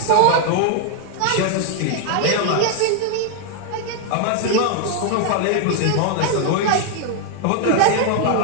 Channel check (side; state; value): both; different; correlation 0.00